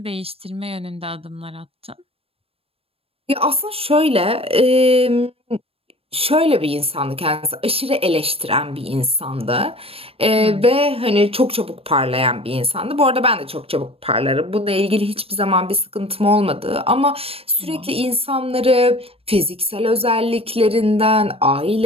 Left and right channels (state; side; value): late; left; 0.28 ms